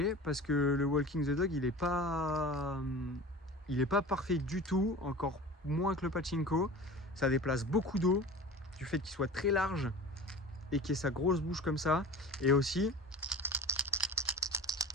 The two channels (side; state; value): both; normal; correlation 0.37